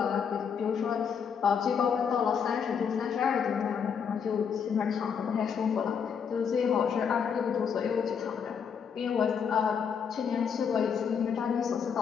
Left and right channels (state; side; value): quieter; right; 6.9 dB